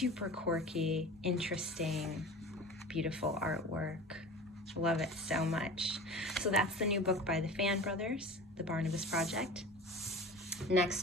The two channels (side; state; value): both; normal; correlation 0.36